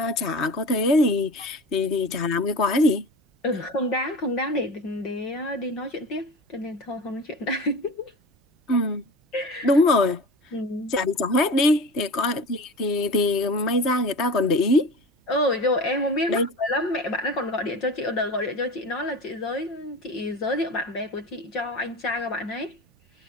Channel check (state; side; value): normal; both; correlation 0.34